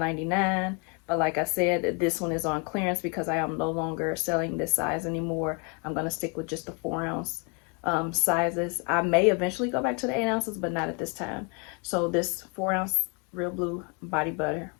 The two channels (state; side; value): quieter; right; 34.5 dB